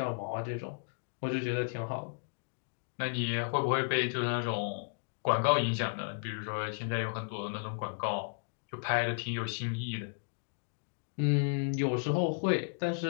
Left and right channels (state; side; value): silent; right; digital silence